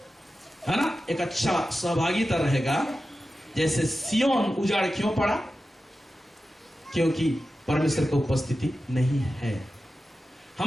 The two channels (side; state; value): both; normal; correlation 0.93